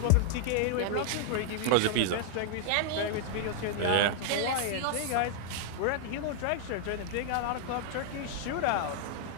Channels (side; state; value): both; different; correlation 0.00